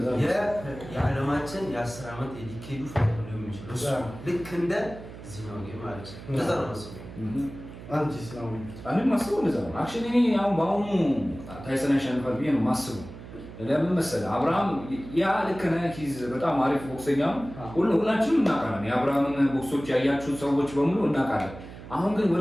የዓለማችን የ10 ዓመት የዲኬዱ ፋይት ነው የሚችለው ልክ እንደ እዚህ ነው ማለት ነው እንደዛ ነው ማስበው አንቺስ ነው እኔ ማስበው እንደዛ ነው አክቹሊ እኔ አሁን በአሁኑ ታይሰን ያሸንፋል ብዬ ነው ማስበው ለምን መሰለህ አብርሃም ያ ልክ ነህ ሂዝ በጣም አሪፍ ቦክሰኛ ሁላችንም እናውቃለን የአብርሃምን ቦክሶች ያያችሁ ሰዎች በሙሉ እናውቃለን አሁን ግን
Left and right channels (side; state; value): right; noise; hum, 14 dB below the sound